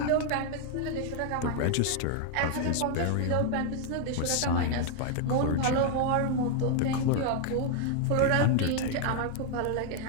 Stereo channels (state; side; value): different; both; correlation 0.00